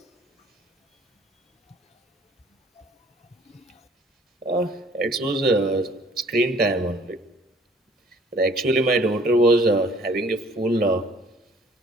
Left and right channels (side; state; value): both; normal; correlation 0.56